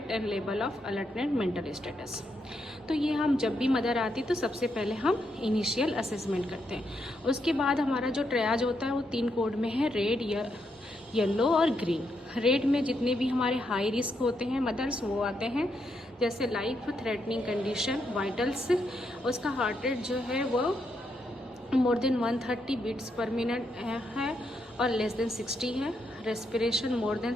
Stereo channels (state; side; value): normal; both; correlation 0.80